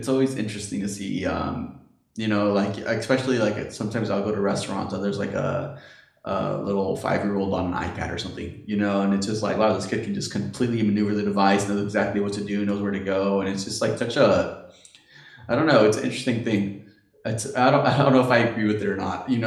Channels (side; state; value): both; identical; correlation 1.00